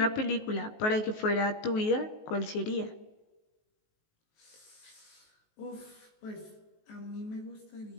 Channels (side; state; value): right; late; 19 ms